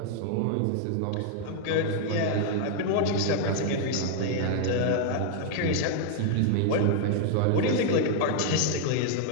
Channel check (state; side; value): different; both; correlation 0.00